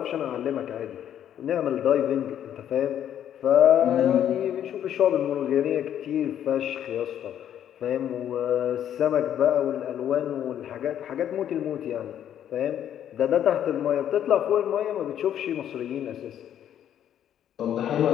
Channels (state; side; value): quieter; right; 10.3 dB